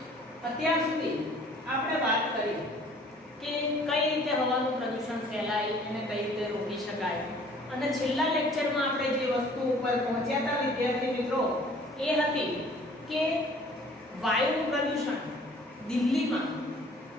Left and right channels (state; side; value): normal; both; correlation 0.54